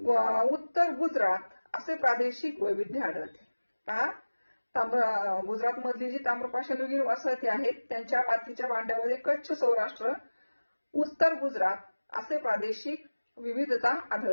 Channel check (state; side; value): inverted; both; correlation -1.00